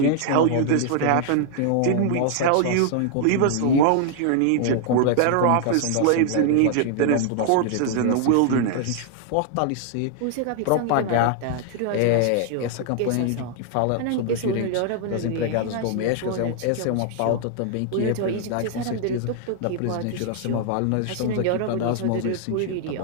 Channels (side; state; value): both; different; correlation 0.00